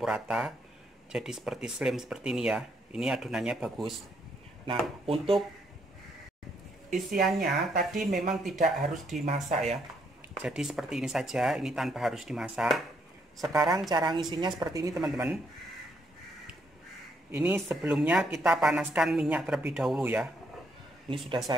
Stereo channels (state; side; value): normal; both; correlation 0.73